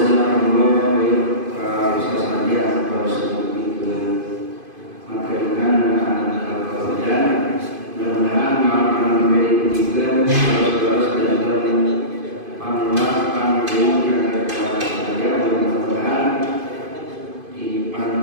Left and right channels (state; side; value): late; left; 2.5 ms